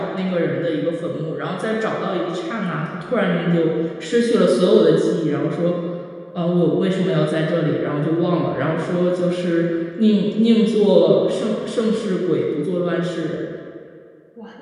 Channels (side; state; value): both; identical; correlation 1.00